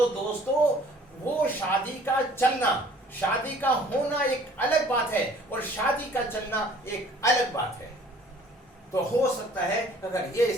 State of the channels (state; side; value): normal; both; correlation 0.54